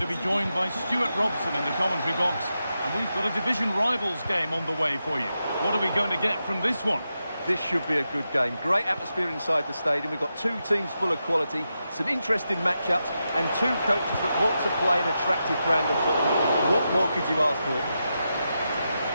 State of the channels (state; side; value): inverted; both; correlation -0.88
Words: be joined by Stuart Robson in the commentary box. And we've got a division rivals game on the way for you. What are we going to get from this one? This should be a good game. Great atmosphere inside the stadium. We've got two teams full of quality, some interesting matchups, and two coaches that want to play an attractive brand of football. What more could you ask for?